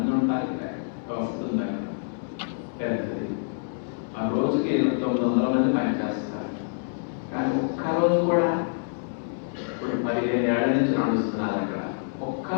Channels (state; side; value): silent; right; 60 dB below the other